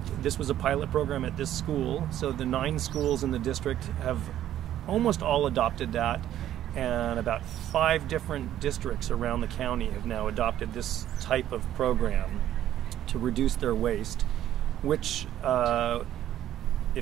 This was a pilot program at this school, so the 9 schools in the district have almost all adopted that, and about 5 different districts around the county have now adopted this type of program to reduce their waste, which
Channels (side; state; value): left; quieter; 12.0 dB